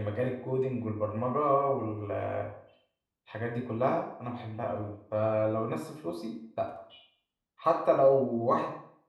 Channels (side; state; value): both; identical; correlation 1.00